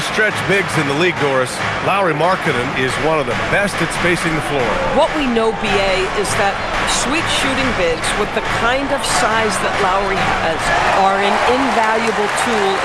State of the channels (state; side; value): identical; both; correlation 1.00